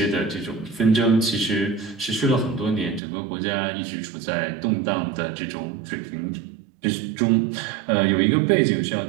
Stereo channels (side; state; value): left; drops out; at 3.0 s